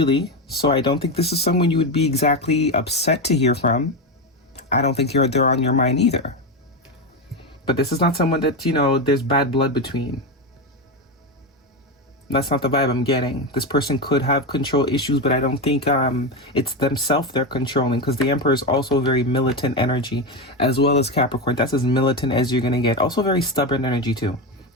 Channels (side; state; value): both; normal; correlation 0.14